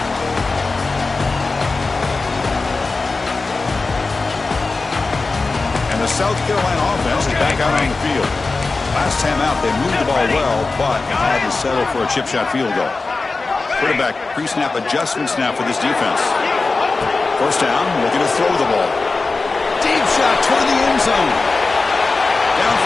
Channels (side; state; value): right; quieter; 3.8 dB